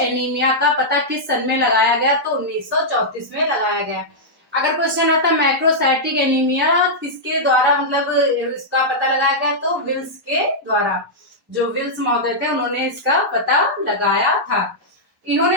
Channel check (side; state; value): both; normal; correlation -0.08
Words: का पता किस सन में लगाया गया, तो 1934 में लगाया गया। अगर क्वेश्चन आता है मैक्रोसाइटिक एनीमिया किसके द्वारा मतलब इसका पता लगाया गया, तो विल्स के द्वारा। जो विल्स महोदय थे उन्होंने इसका पता लगाया था।